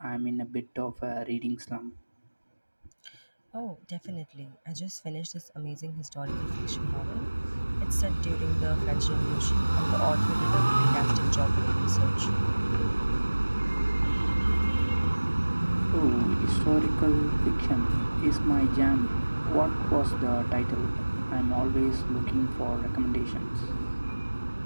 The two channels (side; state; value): both; inverted; correlation -1.00